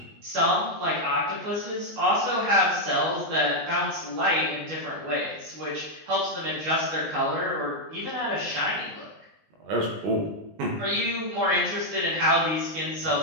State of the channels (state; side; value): late; left; 19 ms